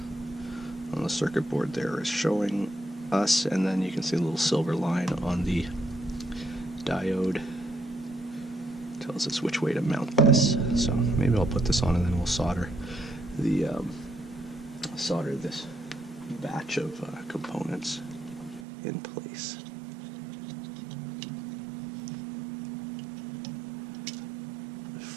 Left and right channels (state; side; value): drops out; left; at 18.7 s